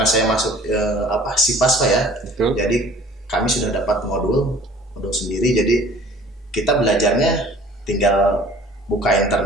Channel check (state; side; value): normal; both; correlation 0.50